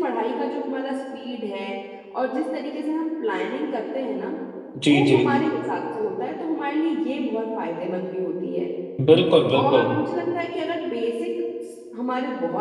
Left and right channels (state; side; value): identical; both; correlation 1.00